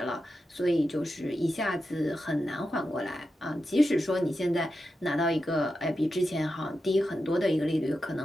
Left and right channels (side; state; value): both; normal; correlation 0.89